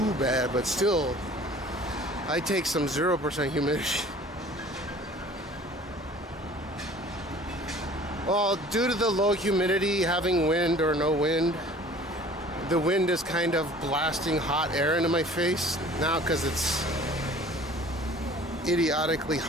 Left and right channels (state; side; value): normal; both; correlation 0.48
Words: bad, but still, I take some 0% humidity. Well, due to the low humidity, having wind or no wind, the wind is kind of blasting hot air into my face now because it's idiotically